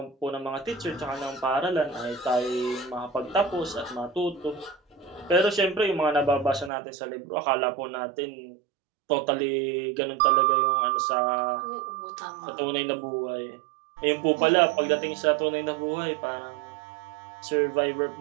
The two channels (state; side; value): drops out; left; at 6.7 s